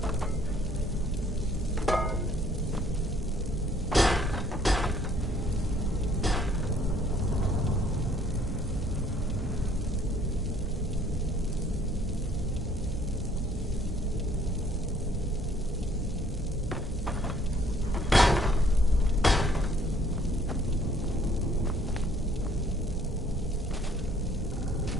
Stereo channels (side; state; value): both; normal; correlation 0.61